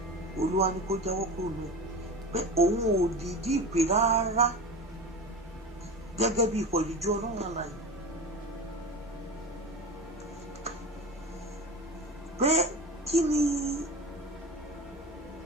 Olúwa ní kó jáwọ́ kúrò lọ pé òun ò dìídì ìpè rárá gẹ́gẹ́ bí ikọ̀ ìríjú ọlọ́run àlàyé pé kí ni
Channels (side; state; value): both; normal; correlation 0.29